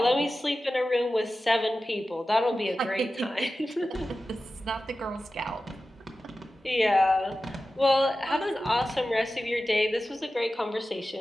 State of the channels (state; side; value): normal; both; correlation 0.94